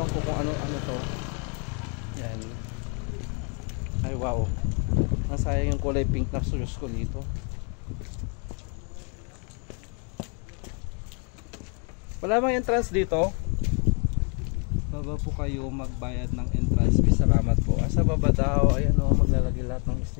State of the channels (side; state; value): right; quieter; 38.0 dB